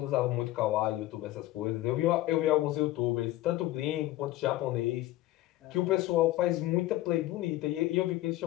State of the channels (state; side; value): quieter; right; 16.1 dB